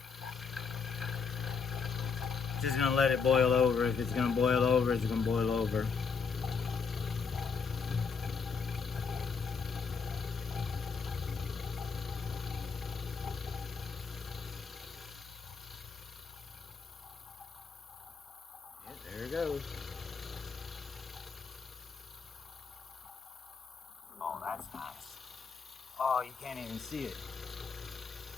Just gonna let it boil over. If it's gonna boil over, it's gonna boil over. Yeah, there it goes. Oh, that's nice. Oh, you can't even see it.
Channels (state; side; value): quieter; right; 5.4 dB